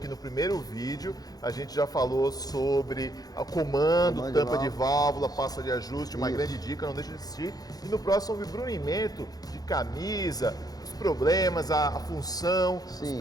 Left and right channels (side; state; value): right; late; 0.18 ms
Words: no primeiro vídeo a gente já falou sobre o comando, tampa de válvula, pasta de ajuste, uma grande dica, não deixe de assistir. E no próximo sobre brunimento de camisa, os problemas, a função, os